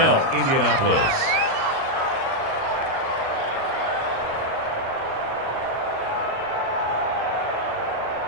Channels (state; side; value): late; left; 37 ms